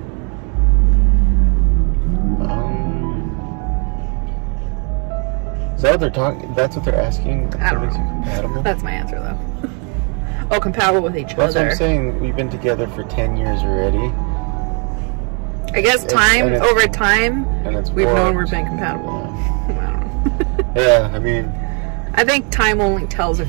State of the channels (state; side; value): quieter; left; 37.3 dB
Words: Is that what they're talking? That's what they're asking? I don't What makes you know. compatible? That's my answer, though. Oh, compatible with each That's other. what I'm saying. We've been together for 10 years already. I guess over time, we've known we're being compatible. Yeah. I don't know. Yeah, I mean, I think time only tells